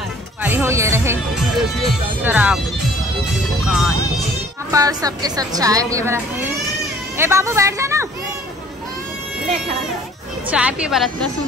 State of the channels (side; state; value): both; normal; correlation 0.54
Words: हो ये रहे शराब दुकान, यहाँ पर सबके सब चाय पिए बना। ए बाबू बैठ जा ना, चाय पिए बना। इतना